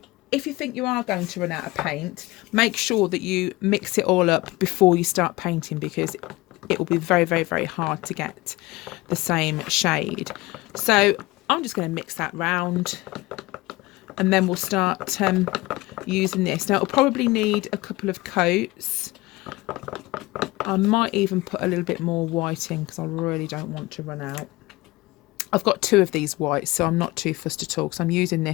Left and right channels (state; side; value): quieter; right; 20.7 dB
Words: if you think you are going to run out of paint, make sure that you mix it all up before you start painting, because it will be very hard to get the same shade. So I'm just going to mix that round, and then we'll start using this. Now it'll probably need a couple of coats. I might even put a little bit more white in because I really don't want to run out. I've got two of these whites, so I'm not too fussed at all, because I'm using